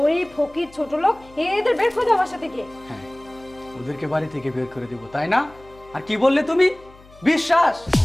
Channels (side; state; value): left; noise; hum, 24 dB below the sound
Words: ফকির ছোট লোক এদের বের করে দাও বাসা থেকে। হ্যাঁ, ওদেরকে বাড়ি থেকে বের করে দেবো, তাই না? আর কি বললে তুমি? বিশ্বাস?